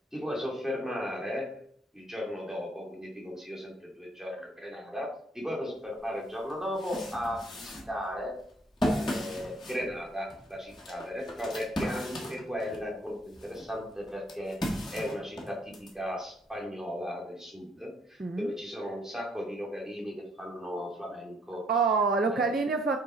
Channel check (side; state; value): both; normal; correlation 0.67